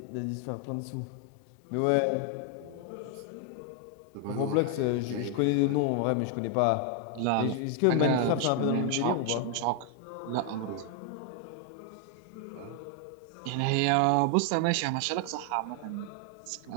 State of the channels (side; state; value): both; different; correlation 0.00